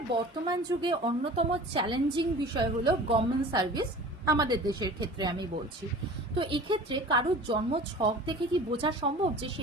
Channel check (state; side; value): normal; both; correlation 0.41